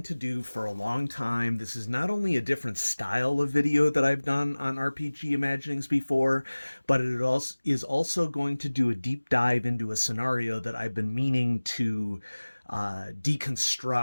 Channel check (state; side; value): inverted; both; correlation -1.00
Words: to do for a long time. This is not only a different style of video that I've done on RPG Imaginings before, but it is also going to do a deep dive into a scenario that I've been meaning to